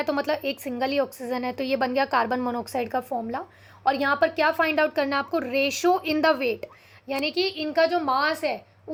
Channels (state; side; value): identical; both; correlation 1.00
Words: तो मतलब एक सिंगल ही ऑक्सीजन है, तो ये बन गया कार्बन मोनोऑक्साइड का फॉर्मूला। और यहाँ पर क्या फाइंड आउट करना है आपको, रेशो इन द वेट, यानी कि इनका जो मास है